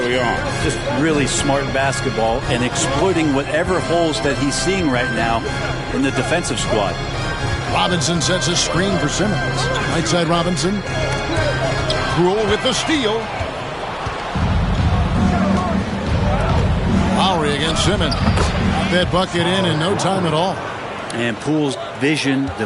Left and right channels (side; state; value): both; identical; correlation 1.00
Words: on. Just really smart basketball and exploiting whatever holes that he's seeing right now in the defensive squad. Robinson sets a screen for Simmons. Right side Robinson. Poole with the steal. Lowry against Simmons. That bucket in no time at all. And Poole's vision